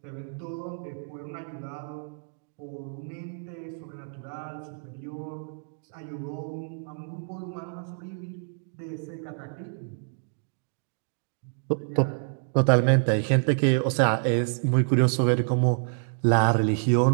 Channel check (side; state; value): left; silent; digital silence